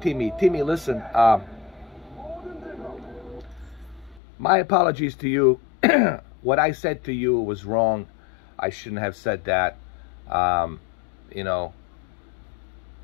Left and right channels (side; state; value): right; drops out; at 4.2 s